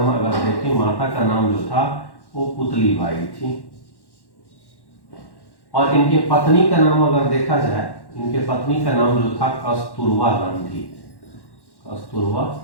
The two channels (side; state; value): right; late; 1.1 ms